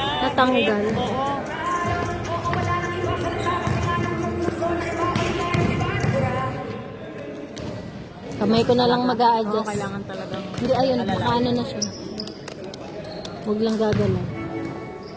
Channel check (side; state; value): both; identical; correlation 1.00